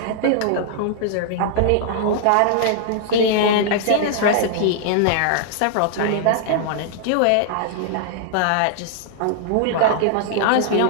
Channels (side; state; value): both; different; correlation -0.01